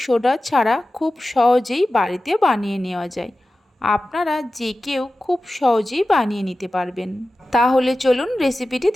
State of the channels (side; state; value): both; normal; correlation 0.95